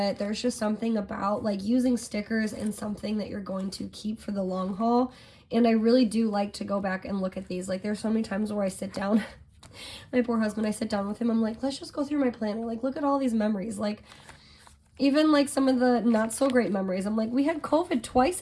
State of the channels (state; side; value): identical; both; correlation 1.00